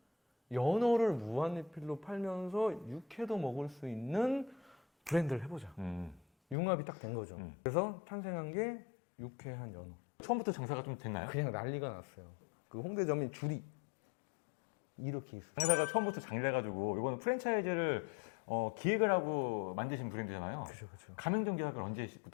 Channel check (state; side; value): drops out; right; at 6.6 s